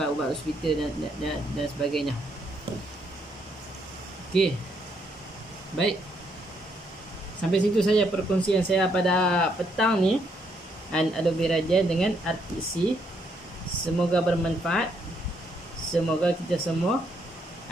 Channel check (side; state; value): both; normal; correlation 0.73